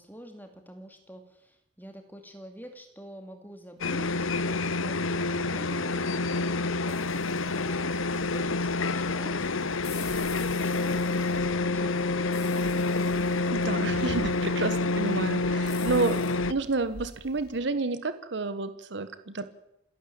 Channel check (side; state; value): both; normal; correlation 0.13